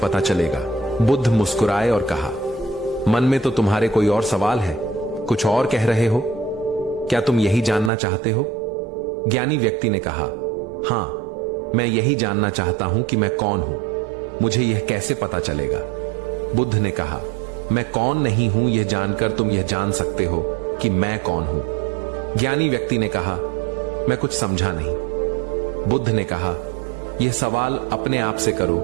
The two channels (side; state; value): left; drops out; at 7.9 s